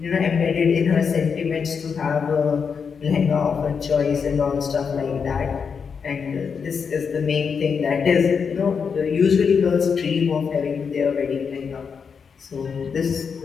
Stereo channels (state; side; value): quieter; right; 6.1 dB